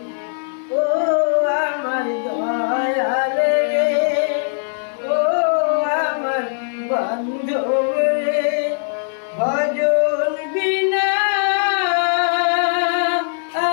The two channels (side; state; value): right; silent; 66 dB below the other